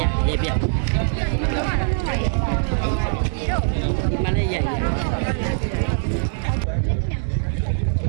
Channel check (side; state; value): left; silent; digital silence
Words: ရေပြမလေးရ